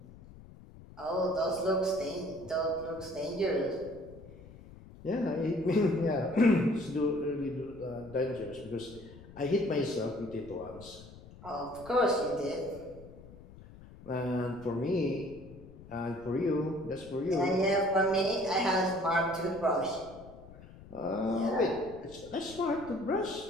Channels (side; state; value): left; noise; rumble, 19 dB below the sound